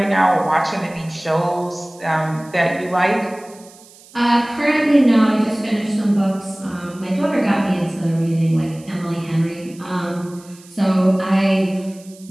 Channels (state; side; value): noise; right; hiss, 24 dB below the sound